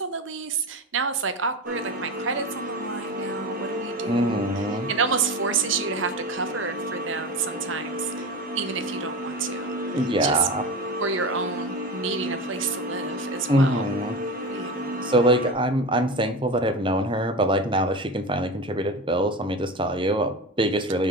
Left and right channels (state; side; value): normal; both; correlation 0.25